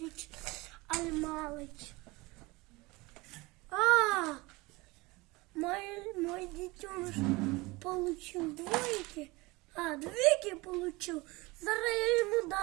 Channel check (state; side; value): quieter; left; 22.9 dB